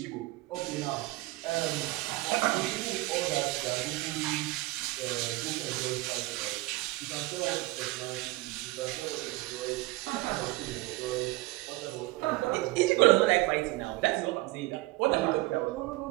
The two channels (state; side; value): quieter; left; 20.4 dB